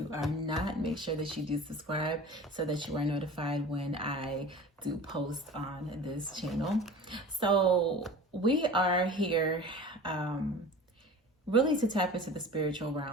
are not, make sure that you do subscribe so that you are notified when I do post on this channel. So we are here really to tap into the spiritual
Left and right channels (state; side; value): normal; both; correlation 0.38